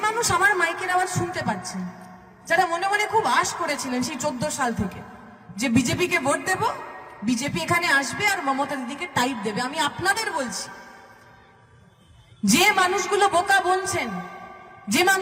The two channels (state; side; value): identical; both; correlation 1.00